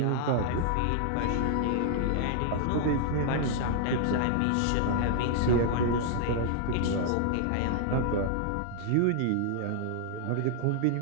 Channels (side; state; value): both; different; correlation -0.01